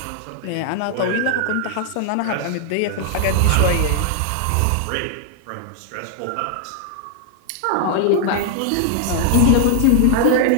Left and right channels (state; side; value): different; both; correlation 0.00